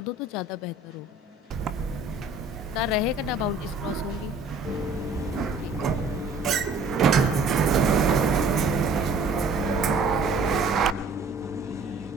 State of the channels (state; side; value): quieter; left; 3.6 dB